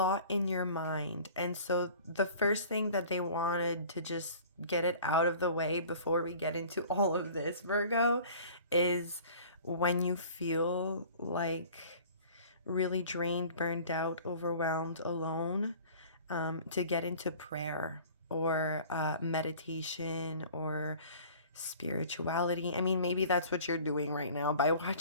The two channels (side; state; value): both; inverted; correlation -0.46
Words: in your mind. And so the first thing that they wanted to just get it out of the way before we get into all of this, Virgo, is when you feel like really drained, burned out, overwhelmed, alone, to get into prayer or meditation or spirituality. I mean, maybe that's what you're doing right now by